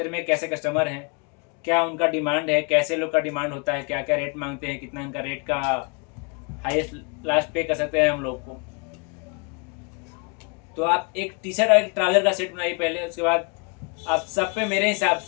में कैसे कस्टमर हैं, क्या उनका डिमांड है, कैसे लोग का डिमांड होता है, क्या क्या रेट मांगते हैं, कितना उनका रेट का हाईएस्ट लास्ट पे कर सकते हैं हम लोग को। तो आप एक टी शर्ट और एक ट्राउजर का सेट बनाइए पहले, उसके बाद आप सब पे मेरे हिसाब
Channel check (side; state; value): right; quieter; 34.8 dB